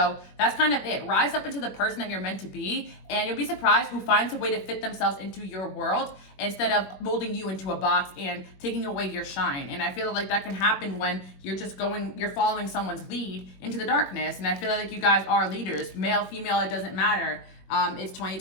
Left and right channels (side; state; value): right; late; 21 ms